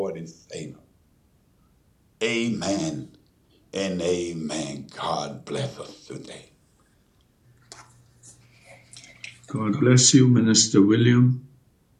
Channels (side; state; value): both; identical; correlation 1.00